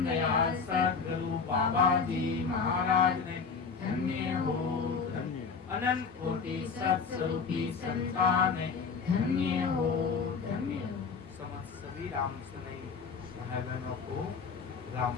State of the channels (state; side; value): quieter; right; 5.5 dB